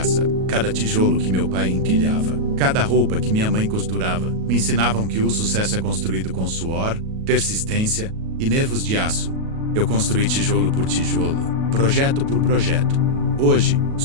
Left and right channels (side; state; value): left; late; 37 ms